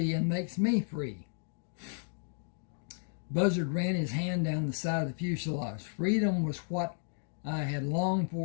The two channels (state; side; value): silent; right; digital silence